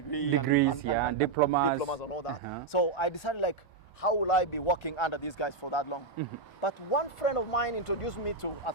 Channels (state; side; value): quieter; left; 4.2 dB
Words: and diplomas and all that. So I decided, like, how will I be working under these guys for that long? But one friend of mine introduced me to